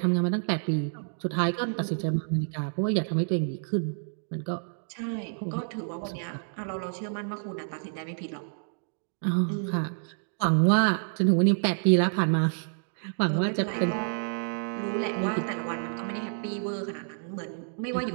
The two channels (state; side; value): silent; left; digital silence